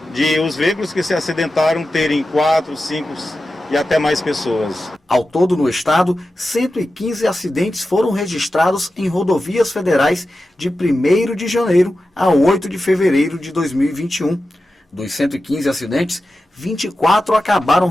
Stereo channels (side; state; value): both; normal; correlation 0.92